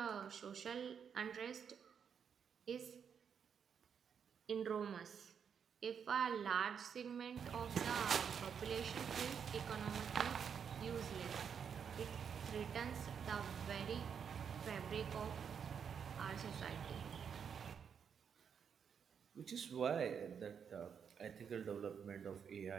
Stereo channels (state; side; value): quieter; left; 7.2 dB